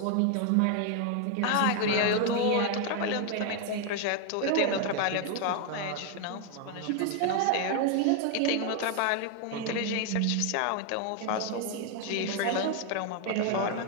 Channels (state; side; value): different; both; correlation 0.00